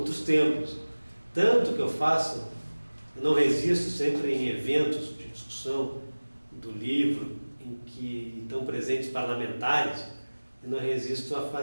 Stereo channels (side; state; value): both; inverted; correlation -1.00